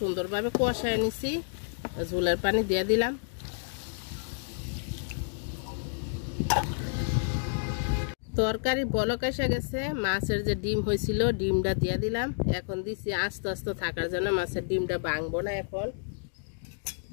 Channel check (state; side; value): silent; right; digital silence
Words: সুন্দরভাবে কষায় নিছি, ঝোলের পানি দিয়ে দিলাম। তরকারি বলক এসে গেছে, মাছের যে ডিম হয়েছিল ডিমটা দিয়ে দিলাম। এখন দিছি আস্তে আস্তে থাকার জন্য, মাছের ডিমটা ভাঙবো না এখন।